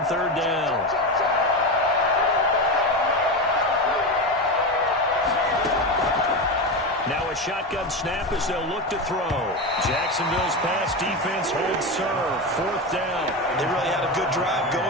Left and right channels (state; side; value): normal; both; correlation 0.18